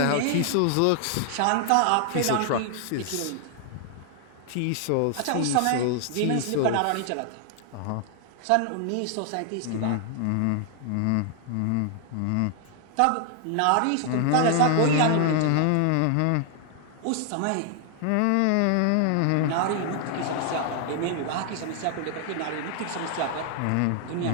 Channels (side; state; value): both; different; correlation 0.00